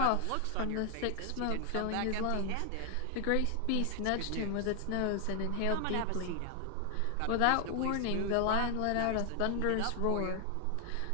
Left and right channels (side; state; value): both; different; correlation 0.00